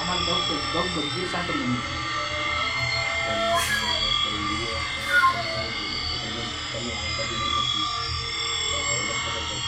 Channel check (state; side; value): identical; both; correlation 1.00